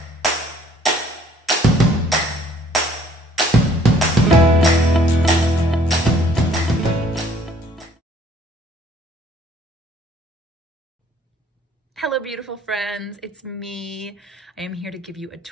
Hello, beautiful friends. It's me. I am here to give you a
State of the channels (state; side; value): normal; both; correlation 0.59